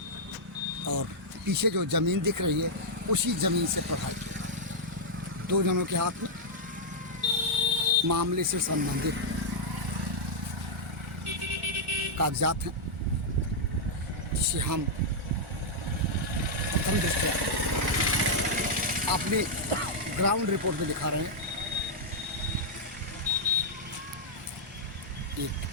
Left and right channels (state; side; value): normal; both; correlation -0.07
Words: और पीछे जो ज़मीन दिख रही है उसी ज़मीन से प्रभावित दो जनों के हाथ में मामले से संबंधित कागजात हैं, जिसे हम प्रथम दृष्टया अपने ग्राउंड रिपोर्ट में दिखा रहे हैं। एक